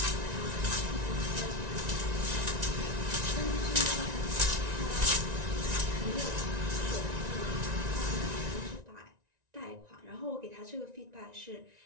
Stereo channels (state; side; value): late; left; 1.9 ms